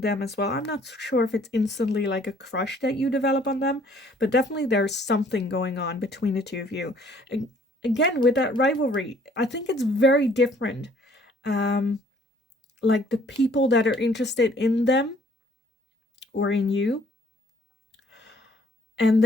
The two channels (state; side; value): normal; both; correlation 0.59